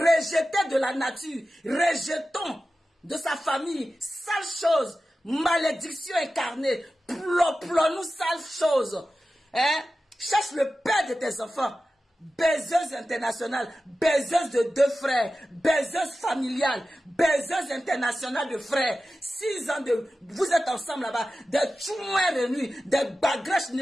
de la nature, rejetons de sa famille, sale chose. Malédiction incarnée, nous sale chose. Hein? Cherche le père de tes enfants. Baiseuse internationale, baiseuse de 2 frères, baiseuse familiale, baiseuse internationale de frères. 6 ans de... Vous êtes ensemble là-bas, des tchouins réunis, des bagrèches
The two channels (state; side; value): normal; both; correlation 0.94